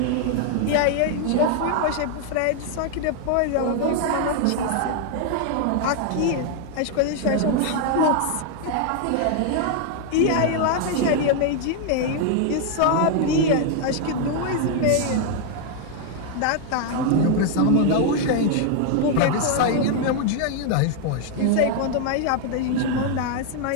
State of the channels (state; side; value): different; both; correlation 0.00